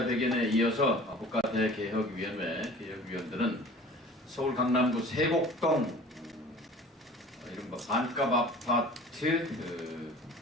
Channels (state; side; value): normal; both; correlation 0.44